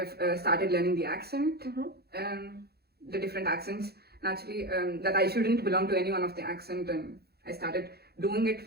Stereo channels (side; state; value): left; late; 0.46 ms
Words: started learning the accent, the different accents. Naturally, that I shouldn't belong to any one of the accent, and I started doing it